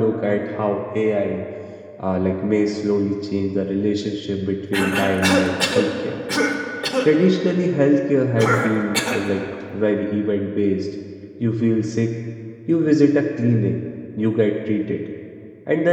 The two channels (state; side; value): identical; both; correlation 1.00